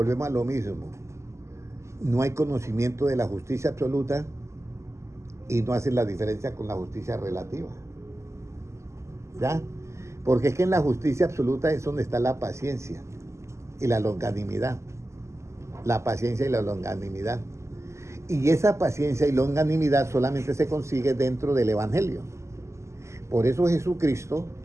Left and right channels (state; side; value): late; left; 0.13 ms